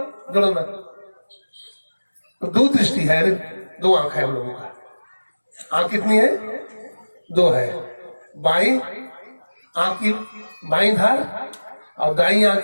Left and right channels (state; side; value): inverted; both; correlation -1.00